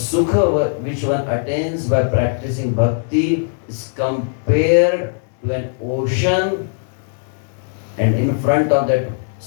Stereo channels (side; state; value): right; silent; digital silence